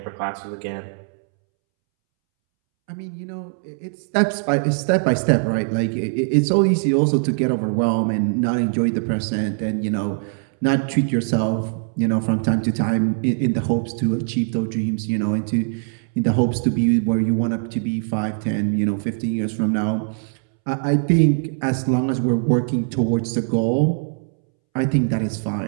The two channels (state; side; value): silent; left; 65 dB below the other